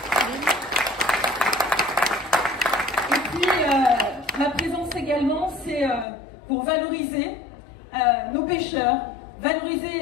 Et puis, ma présence également, c'est pour valoriser nos pêcheurs,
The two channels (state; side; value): drops out; right; at 6.1 s